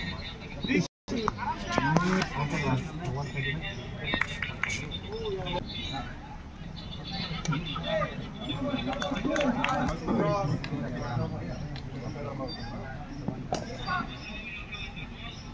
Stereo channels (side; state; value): both; identical; correlation 1.00